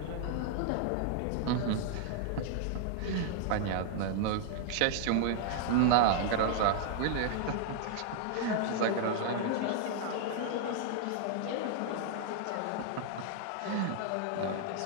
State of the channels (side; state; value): both; different; correlation -0.01